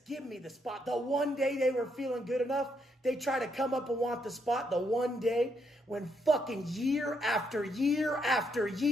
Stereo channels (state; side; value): normal; both; correlation 0.76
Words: give me the spot. The one day they were feeling good enough, they try to come up and want the spot. The one day when fucking year after year after